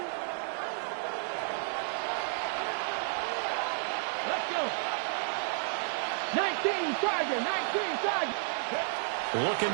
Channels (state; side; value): silent; left; digital silence